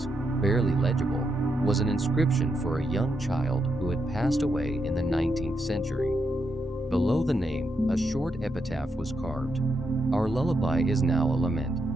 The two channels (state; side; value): normal; both; correlation 0.82